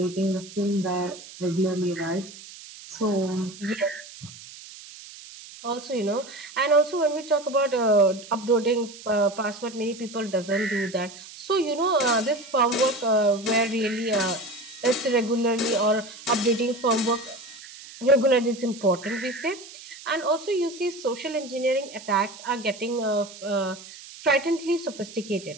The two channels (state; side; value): noise; right; hiss, 16 dB below the sound